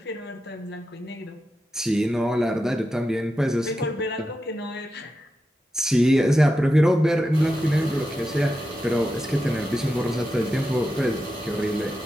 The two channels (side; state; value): both; normal; correlation 0.89